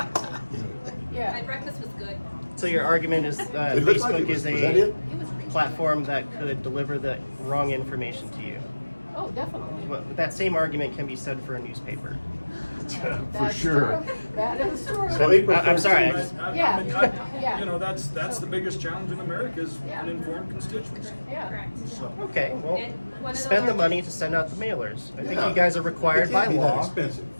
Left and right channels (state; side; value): inverted; both; correlation -1.00